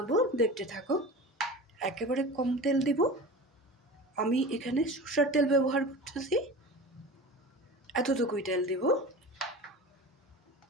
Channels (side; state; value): both; normal; correlation 0.34